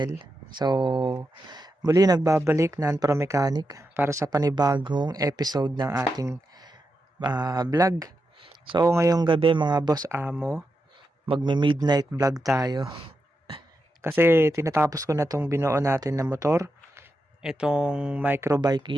So, muli nagbabalik Pro Mechanic para sa panibagong episode ng ating vlog. So, ngayong gabi mga boss amo, magme-midnight vlog tayo. Kasi tinatapos ko na tong binuo natin na motor, itong Microbike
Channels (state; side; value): normal; both; correlation 0.87